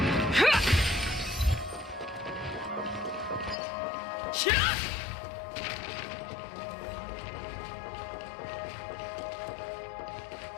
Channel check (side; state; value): right; drops out; at 3.6 s